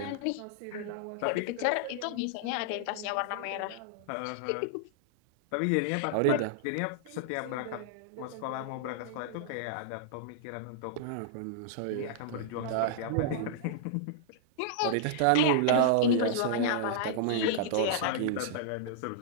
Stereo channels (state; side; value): different; both; correlation -0.02